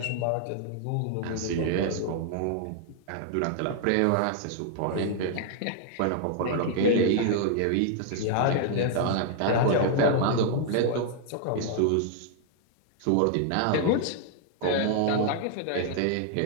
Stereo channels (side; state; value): both; different; correlation 0.00